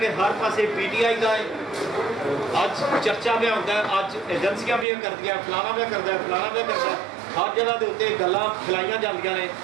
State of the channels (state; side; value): drops out; left; at 4.9 s